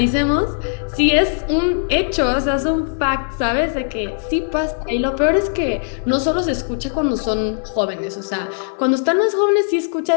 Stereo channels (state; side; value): silent; right; digital silence